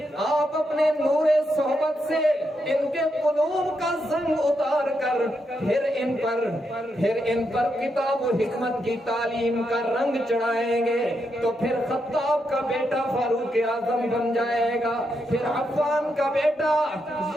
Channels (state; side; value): normal; both; correlation 0.82